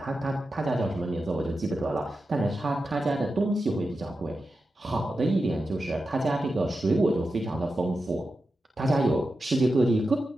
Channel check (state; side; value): normal; both; correlation 0.90